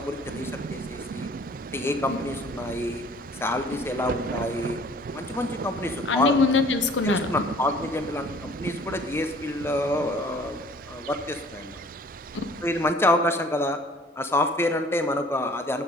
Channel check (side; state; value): both; normal; correlation 0.52